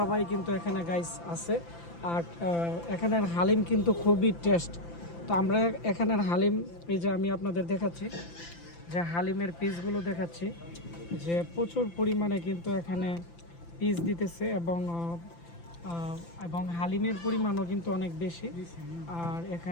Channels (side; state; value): right; late; 5.9 ms